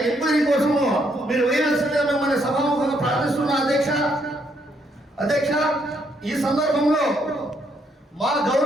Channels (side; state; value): both; normal; correlation 0.73